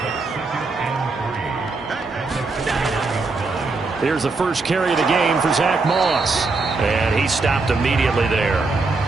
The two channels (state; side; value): quieter; left; 3.8 dB